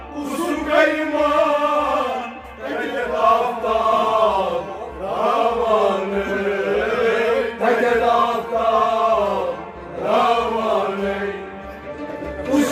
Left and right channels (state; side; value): identical; both; correlation 1.00